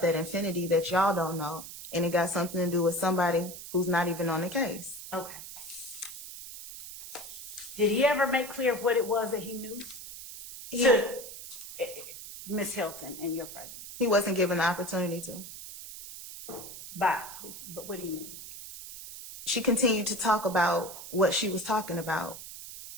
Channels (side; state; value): right; noise; hiss, 12 dB below the sound